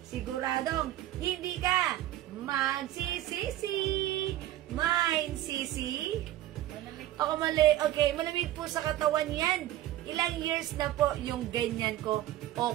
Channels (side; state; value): left; quieter; 14.0 dB